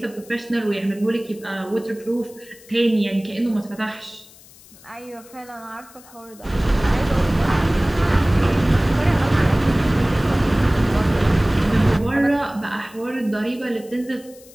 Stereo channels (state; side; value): noise; left; hiss, 23 dB below the sound